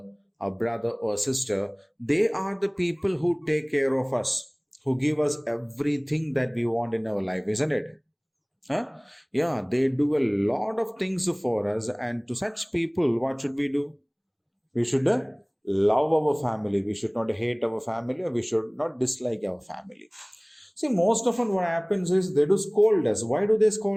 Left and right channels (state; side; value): identical; both; correlation 1.00